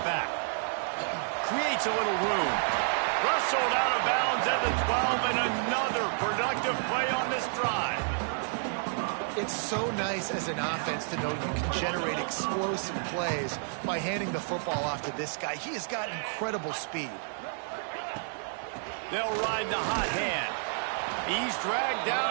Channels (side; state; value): left; silent; 58 dB below the other